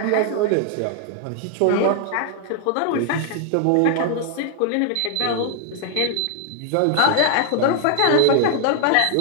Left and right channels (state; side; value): different; both; correlation 0.00